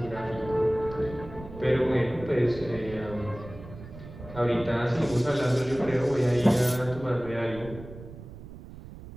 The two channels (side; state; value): right; noise; rumble, 15 dB below the sound